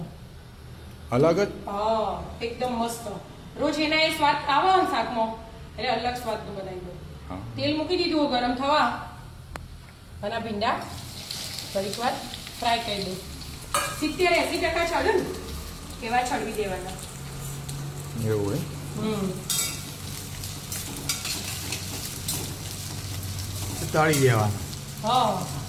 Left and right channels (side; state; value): both; identical; correlation 1.00